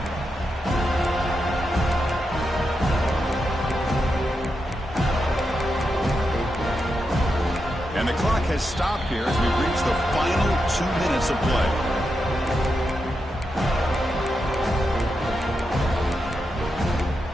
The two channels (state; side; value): normal; both; correlation 0.86